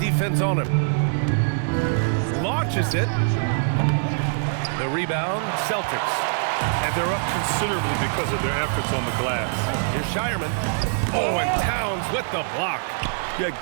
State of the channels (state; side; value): silent; left; digital silence